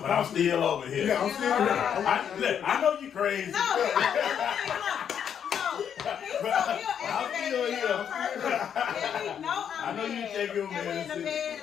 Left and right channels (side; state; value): right; quieter; 8.4 dB